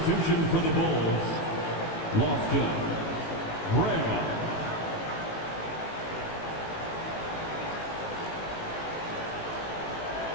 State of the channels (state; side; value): late; right; 18 ms